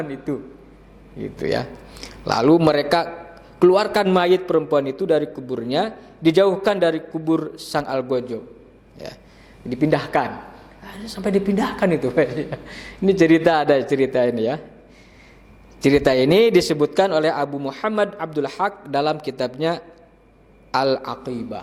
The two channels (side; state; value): both; identical; correlation 1.00